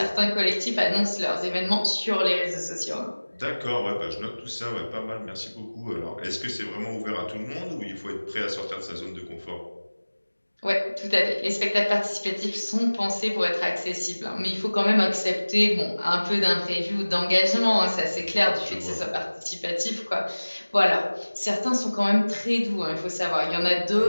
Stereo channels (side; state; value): both; inverted; correlation -1.00